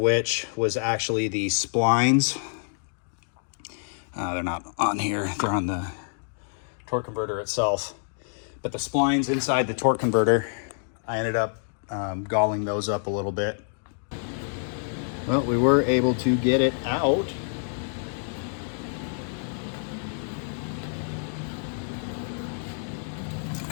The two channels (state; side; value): silent; right; digital silence